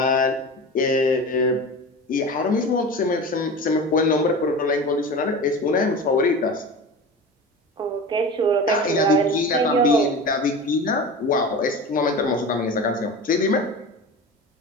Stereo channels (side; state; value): both; normal; correlation 0.31